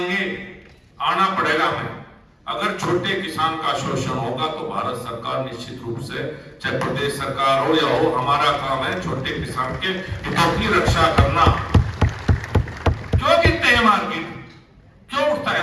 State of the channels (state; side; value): identical; both; correlation 1.00